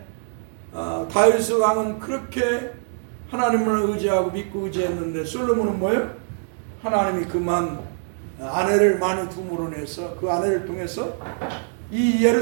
다윗 왕은 그렇게 하나님을 의지하고 믿고 의지했는데 솔로몬은 뭐예요? 하나님이 그만 아내를 많이 둠으로 내서 그 아내를 통해서 이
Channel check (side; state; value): left; silent; digital silence